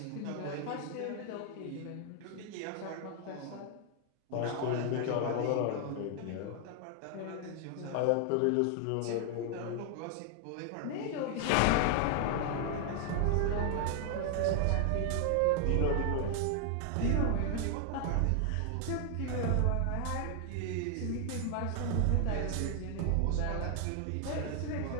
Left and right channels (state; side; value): different; both; correlation 0.00